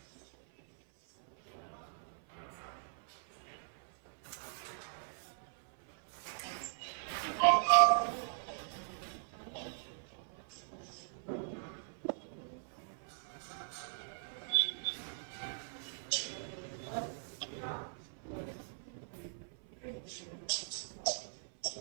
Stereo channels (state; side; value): silent; left; 51 dB below the other